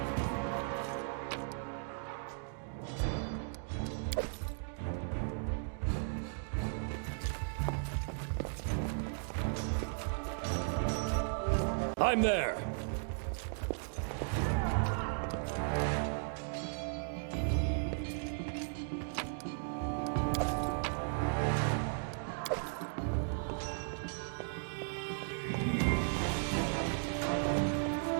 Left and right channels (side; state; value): left; silent; digital silence